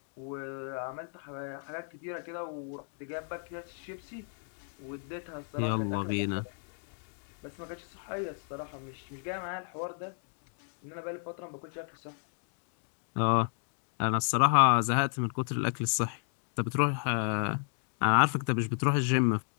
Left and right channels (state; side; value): silent; right; 56 dB below the other